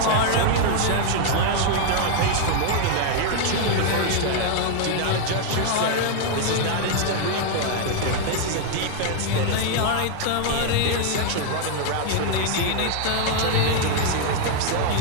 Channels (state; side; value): different; both; correlation 0.00